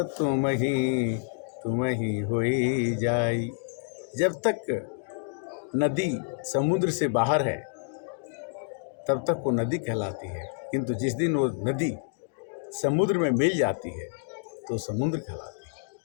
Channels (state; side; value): silent; right; digital silence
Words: तुम ही होई जाई। जब तक नदी समुद्र से बाहर है तब तक वो नदी कहलाती है, किंतु जिस दिन वो नदी समुद्र में मिल जाती है तो समुद्र कहलाती है।